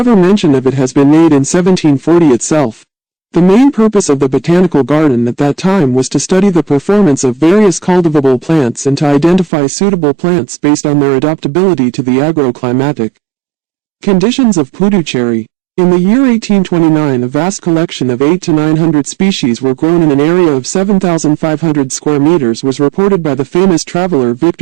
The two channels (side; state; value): left; drops out; at 9.5 s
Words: mention of it has been made in 1740 itself. The main purpose of the Botanical Garden at that time was to study the performance of various cultivable plants and to identify suitable plants based on their adaptability to the agroclimatic conditions of Puducherry. In the year 1829, a vast collection of 800 to 900 species were grown in an area of 7,500 square meters was reported by the famous traveler